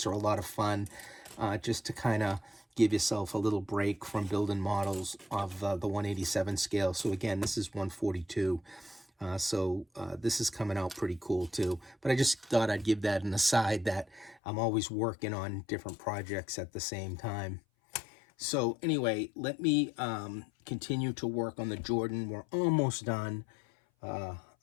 are a lot of fun, just to kind of give yourself a little break from building models of the 187 scale. So again, this is 142. So this is coming out pretty cool too. But I just thought I'd give that an aside, that I'm always working on different projects at the same time. So anyway, let me continue to work on the Jordan. We're almost done.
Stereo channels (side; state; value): right; drops out; at 14.4 s